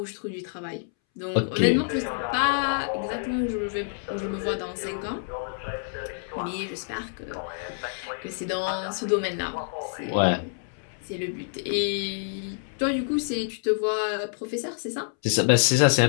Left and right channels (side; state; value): right; silent; 60 dB below the other